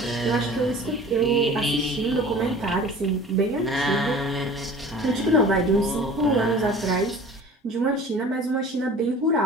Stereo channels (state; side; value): normal; both; correlation 0.43